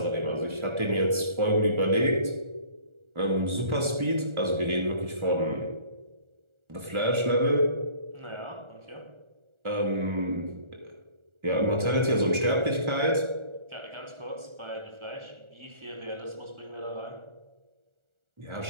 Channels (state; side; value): late; left; 1.4 ms